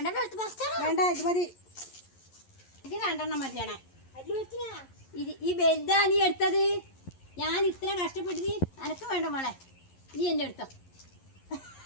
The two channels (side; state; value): right; late; 11 ms